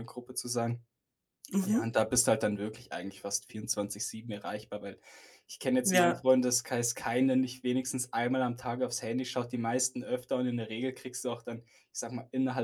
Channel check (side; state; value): both; identical; correlation 1.00